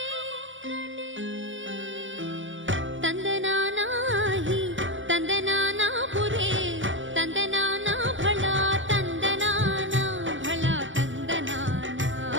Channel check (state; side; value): late; left; 0.56 ms